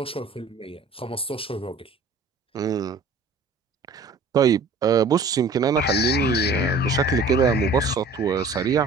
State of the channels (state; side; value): quieter; left; 3.6 dB